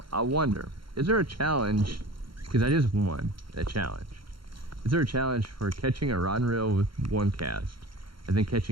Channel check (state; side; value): late; left; 0.73 ms